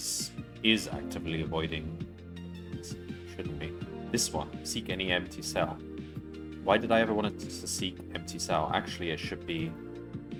actively avoiding... Shouldn't be. This one, seek any empty cell. Why did I ever want it to seek empty cell? Actually, it should be...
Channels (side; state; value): both; identical; correlation 1.00